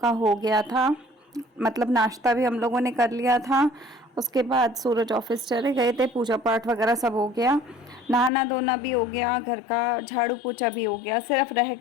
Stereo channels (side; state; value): right; drops out; at 8.3 s